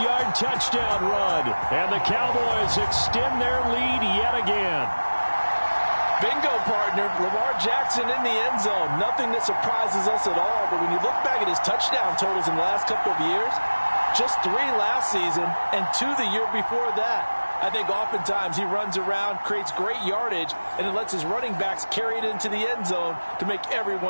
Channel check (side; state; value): both; inverted; correlation -1.00